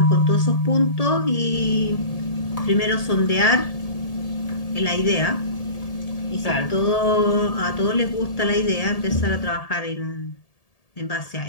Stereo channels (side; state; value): right; late; 1.8 ms